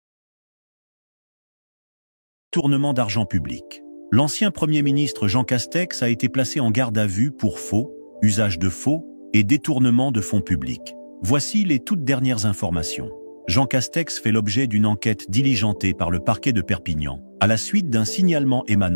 Détournement d'argent public. L'ancien Premier ministre Jean Castex a été placé en garde à vue pour faux, usage de faux et détournement de fonds publics. Voici les toutes dernières informations. Jean Castex fait l'objet d'une enquête diligentée par le parquet de Perpignan, à la suite d'un signalement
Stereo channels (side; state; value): both; inverted; correlation -1.00